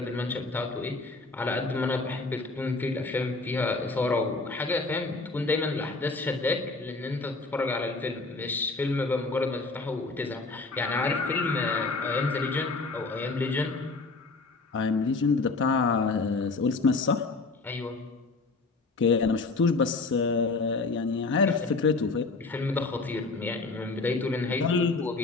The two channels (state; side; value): quieter; right; 3.7 dB